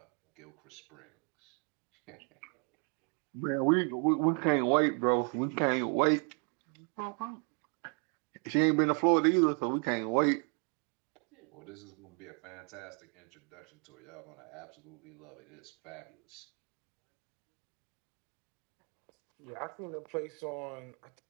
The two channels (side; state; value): left; quieter; 38.9 dB